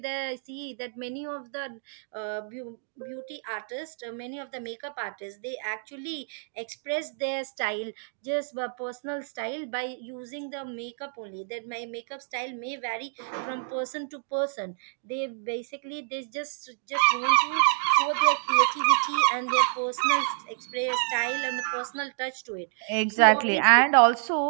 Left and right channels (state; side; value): silent; left; digital silence